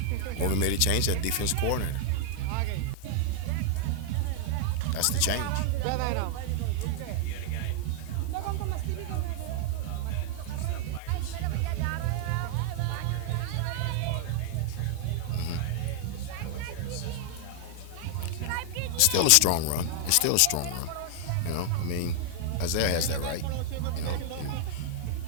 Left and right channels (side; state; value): both; different; correlation 0.00